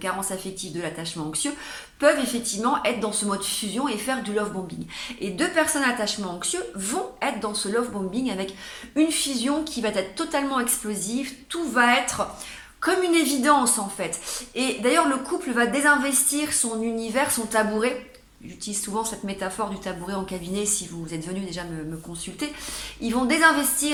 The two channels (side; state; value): both; identical; correlation 1.00